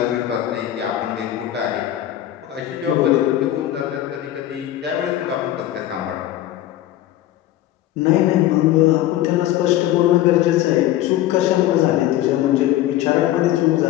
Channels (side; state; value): right; quieter; 13.5 dB